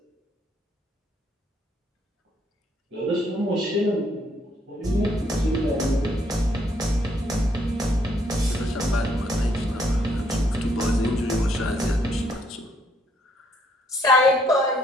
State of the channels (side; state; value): both; normal; correlation 0.70